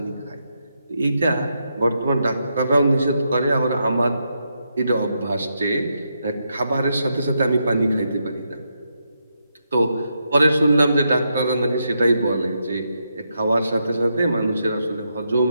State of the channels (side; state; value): both; inverted; correlation -0.82